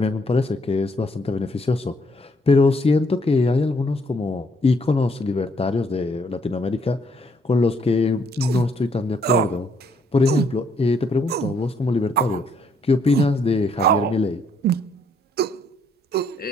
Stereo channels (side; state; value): both; normal; correlation 0.69